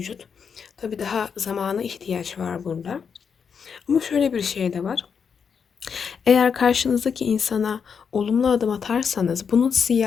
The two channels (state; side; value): quieter; right; 6.5 dB